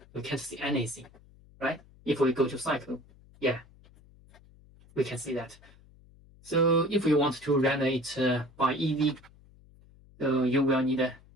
we can't see anything, right? If we go to cycle, yeah, we can see that. So if we want to render it by Eevee, so you will need a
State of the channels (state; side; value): noise; left; hum, 26 dB below the sound